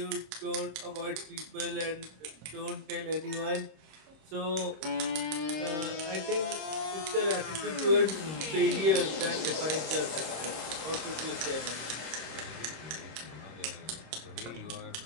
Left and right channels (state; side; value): late; left; 26 ms